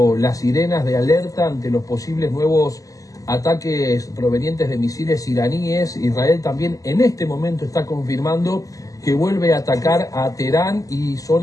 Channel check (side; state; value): right; late; 0.17 ms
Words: las sirenas de alerta ante los posibles nuevos ataques provenientes de misiles iraníes. Israel también en este momento está confirmando que vuelve a atacar a Teherán y